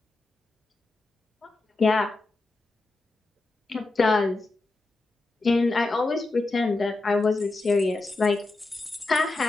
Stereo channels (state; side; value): quieter; right; 3.2 dB